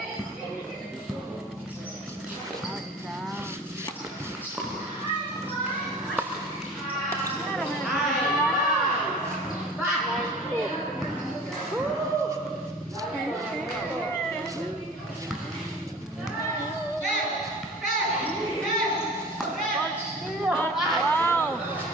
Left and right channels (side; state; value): both; normal; correlation 0.42